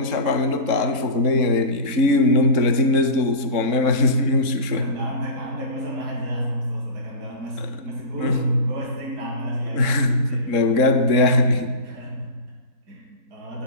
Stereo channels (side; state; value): left; late; 3.7 ms